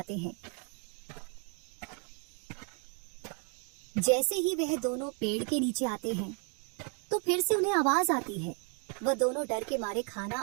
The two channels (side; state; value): left; quieter; 39.1 dB